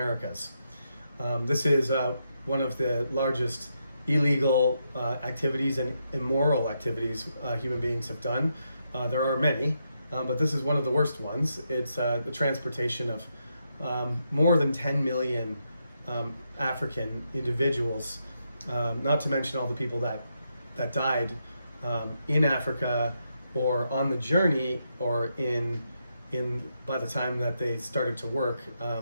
This is one of the largest illegal activities and immoral activities human beings have done. There are many, but this is one of the worst ones. It's the transportation of more than 10 million African individuals, not to mention all the people that died in Africa or on the journey or in by the time that they started to work,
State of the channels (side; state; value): both; inverted; correlation -0.82